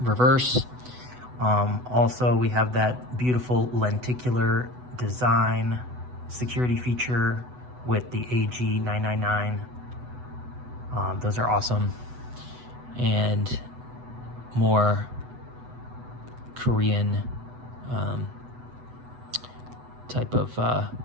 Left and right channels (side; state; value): left; late; 8.0 ms